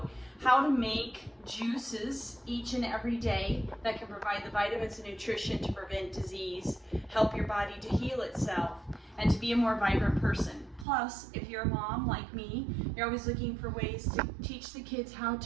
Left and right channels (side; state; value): left; drops out; at 10.9 s